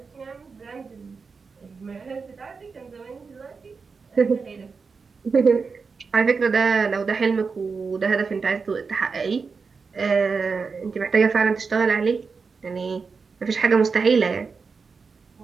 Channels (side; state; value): left; quieter; 5.0 dB